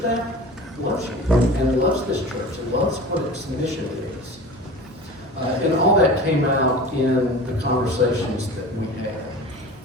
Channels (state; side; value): normal; both; correlation 0.36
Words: loves you and loves this church and loves what its mission is. And all that came out in the conversations that we